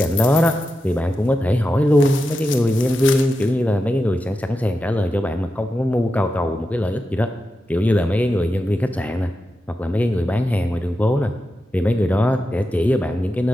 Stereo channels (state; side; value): normal; both; correlation 0.89